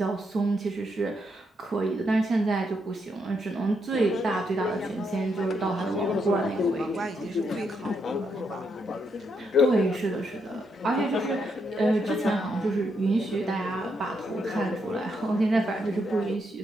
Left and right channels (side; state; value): both; normal; correlation 0.79